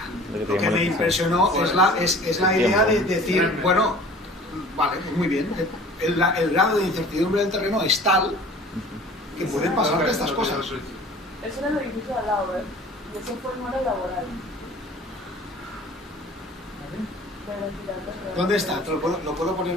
la impresionó es la idea de decir, bueno, vale, pues muy bien, el grado de incertidumbre del terreno es tal que pueden pasar estas cosas. Eso era el edificio de al lado, ¿eh? Y eso fue no era laboral. ¿Dónde está? ¿Lo puedo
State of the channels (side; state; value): both; normal; correlation 0.46